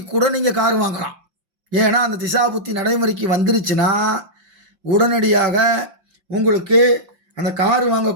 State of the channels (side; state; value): left; late; 5.7 ms